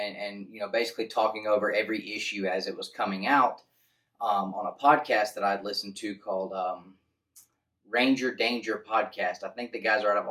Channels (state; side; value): identical; both; correlation 1.00